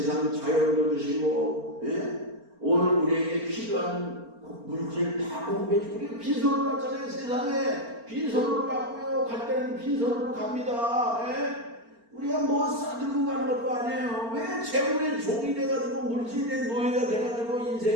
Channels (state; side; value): late; left; 4.4 ms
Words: 자연도 주시고, 오늘 우리에게 필요한 물질 다 공급해 주고, 우리가 빈손으로 갔잖아요. 세상에 빈손으로 갔고요. 갈 때는 빈손으로 갑니다. 우리가 뭐 싸들고 가는 것도 아니에요. 왜 재물의 종이 돼가지고 물질의 노예가 돼가지고